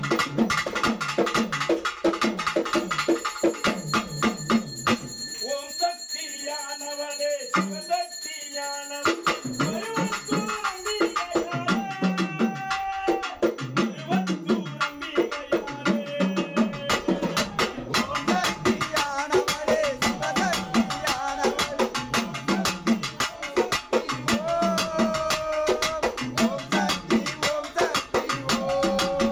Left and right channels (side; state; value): both; identical; correlation 1.00